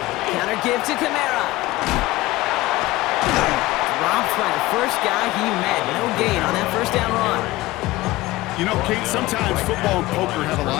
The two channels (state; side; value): quieter; right; 18.7 dB